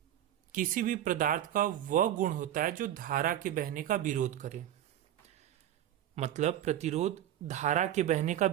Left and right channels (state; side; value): quieter; left; 11.7 dB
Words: किसी भी पदार्थ का वह गुण होता है जो धारा के बहने का विरोध करे। मतलब प्रतिरोध धारा के बहने का